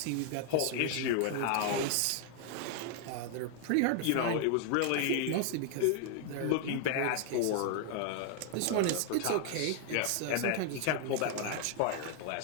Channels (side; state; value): both; different; correlation 0.00